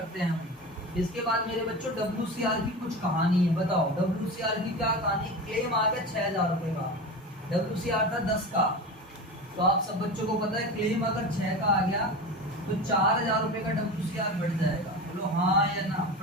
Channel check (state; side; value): normal; both; correlation 0.28